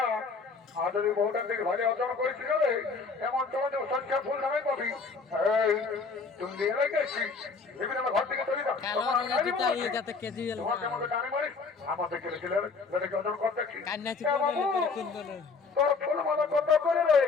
আর যদি বহুটার দিকে ভালো অর্জন করেছি গেলে এমন তোমার সংখ্যা ফুল নামে পাবি। তুমি দিয়ে রেখেছি বিভিন্ন ঘর থেকে তৈরি আমাদের কেলেছিলেন অর্জন করতে তোর ফুল মালা কত করে রে?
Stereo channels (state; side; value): quieter; right; 4.6 dB